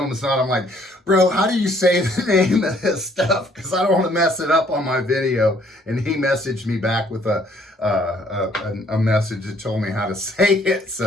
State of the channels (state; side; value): normal; both; correlation 0.63